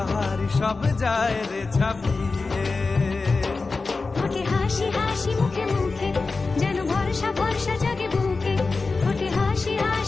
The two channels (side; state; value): right; quieter; 4.0 dB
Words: হারি সব যায় রে ছাপিয়ে। ওঠে হাসি হাসি মুখে মুখে যেন ভরসা ভরসা জাগে বুকে। ওঠে হাসি